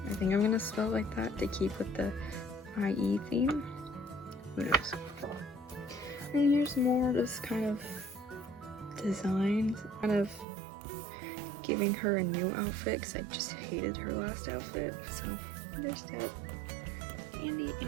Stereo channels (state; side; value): drops out; left; at 10.5 s